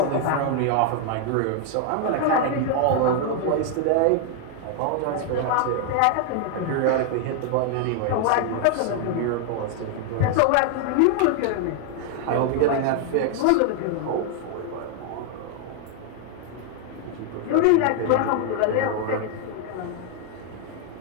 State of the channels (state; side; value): different; both; correlation 0.00